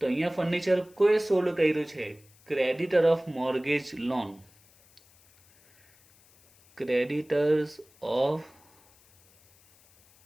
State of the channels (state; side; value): noise; left; hiss, 29 dB below the sound